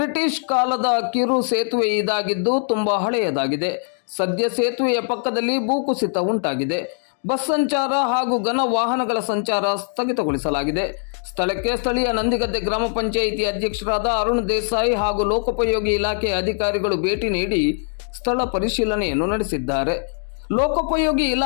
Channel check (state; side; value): silent; right; 59 dB below the other